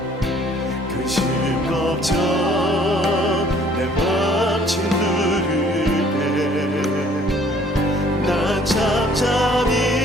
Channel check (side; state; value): both; normal; correlation 0.58